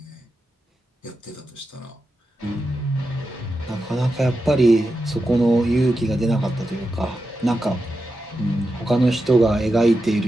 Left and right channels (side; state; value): both; normal; correlation 0.89